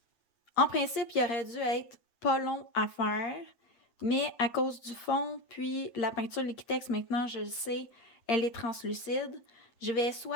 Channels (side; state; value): right; late; 8.6 ms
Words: En principe, il aurait dû être pas long à faire, mais à cause du fond, puis la peinture Liquitex, maintenant, je le sais, elle est translucide. Je vais